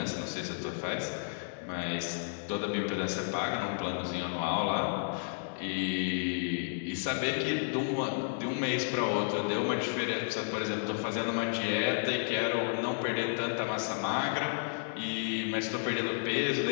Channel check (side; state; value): right; silent; digital silence